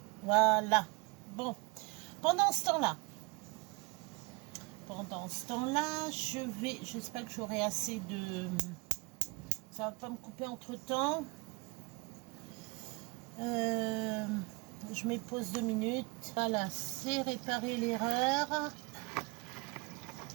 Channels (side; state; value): left; quieter; 27.7 dB